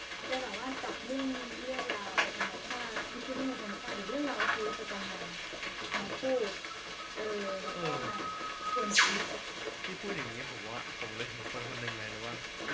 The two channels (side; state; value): both; identical; correlation 1.00